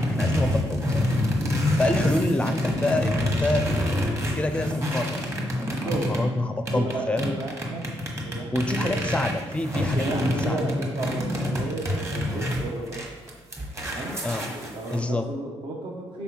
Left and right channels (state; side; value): normal; both; correlation 0.79